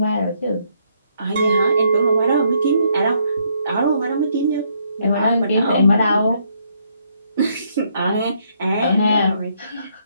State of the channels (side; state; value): both; inverted; correlation -0.72